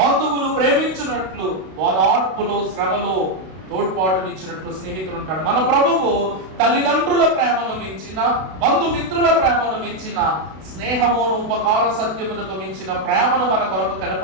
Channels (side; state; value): left; late; 32 ms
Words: ప్రేమించినట్లు, ఓదార్పులో శ్రమలో తోడ్పాటునిచ్చినట్లు స్నేహితుడు ఉంటాడు. మన ప్రభువు తల్లిదండ్రుల ప్రేమను మించిన, బంధుమిత్రుల ప్రేమను మించిన, స్నేహమును ఉపకార సత్యమునకు మించిన ప్రేమను మన కొరకు